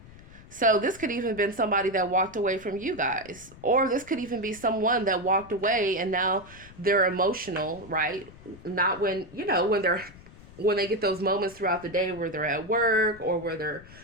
So this could even been somebody that walked away from you guys, or this could even be someone that walked away and now they're emotional, right? Not when, you know, when they get those moments throughout the day where they're at work, or where they're,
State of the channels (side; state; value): left; noise; rumble, 20 dB below the sound